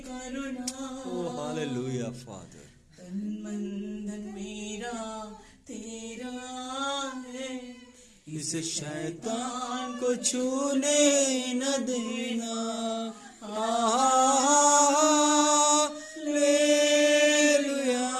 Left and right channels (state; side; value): identical; both; correlation 1.00